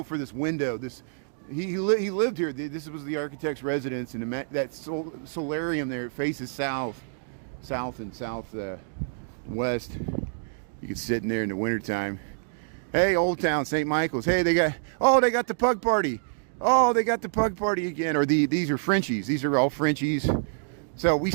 for this window. He lived here. This was the architect's residence, and that solarium there, it faces south and southwest. You can sit in there in the wintertime. Hey, Old Town, St. Michael's. Hey, they got the pug party. Oh, they got the pug party again. Or these are Frenchies. These are all Frenchies. So we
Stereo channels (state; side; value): silent; left; digital silence